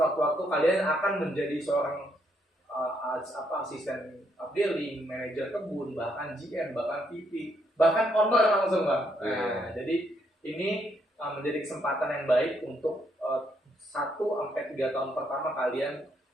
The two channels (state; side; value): normal; both; correlation 0.74